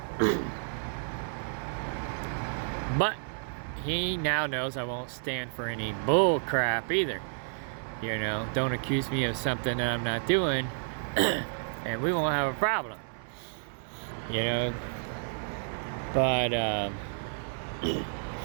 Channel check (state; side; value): silent; left; 57 dB below the other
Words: but he now knows I won't stand for any bull crap either. Don't accuse me of something that I'm not doing, and we won't have a problem. But